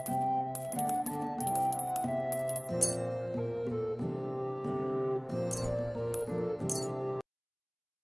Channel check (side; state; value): both; identical; correlation 1.00